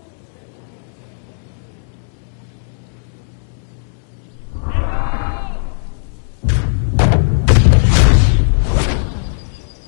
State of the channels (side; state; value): right; silent; digital silence